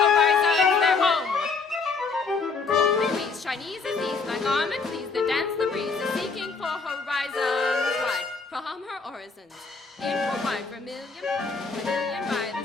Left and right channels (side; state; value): right; quieter; 4.6 dB